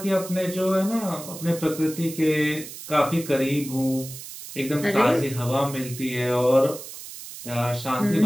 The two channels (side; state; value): right; noise; hiss, 12 dB below the sound